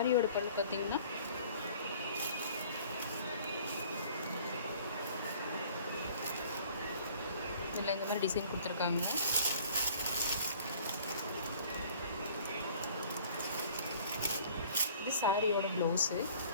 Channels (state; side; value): inverted; both; correlation -0.52